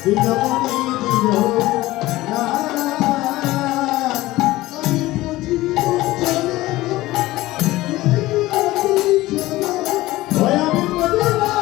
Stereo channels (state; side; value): quieter; right; 17.8 dB